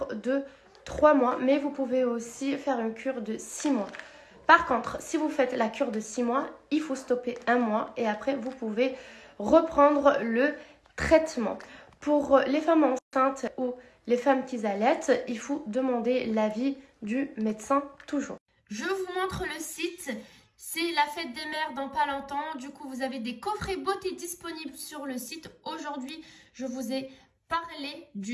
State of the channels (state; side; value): identical; both; correlation 1.00